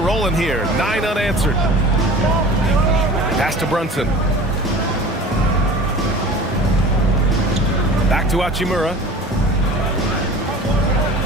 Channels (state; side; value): normal; both; correlation 0.40